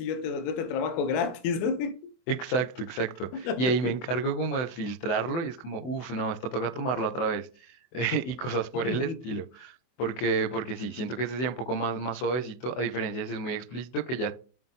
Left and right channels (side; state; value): right; late; 24 ms